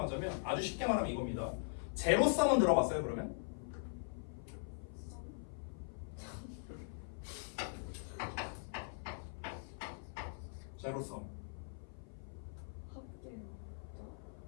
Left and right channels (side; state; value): right; silent; 50 dB below the other